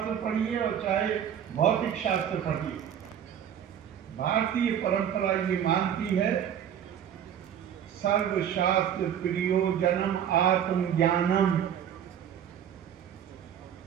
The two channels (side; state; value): left; quieter; 9.2 dB